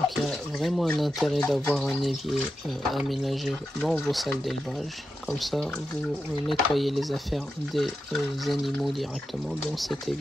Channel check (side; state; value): both; normal; correlation 0.89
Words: il y a vraiment un intérêt d'avoir un évier aménagé dans vos salles d'élevage. Comme ça, vous nettoyez les affaires des animaux directement dans cet